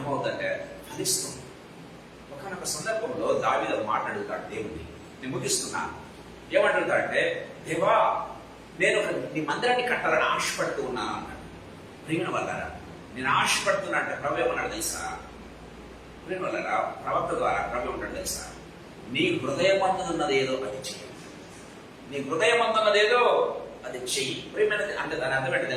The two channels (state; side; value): identical; both; correlation 1.00